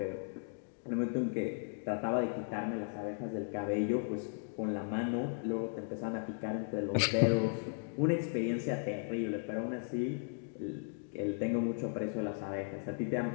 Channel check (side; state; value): right; silent; digital silence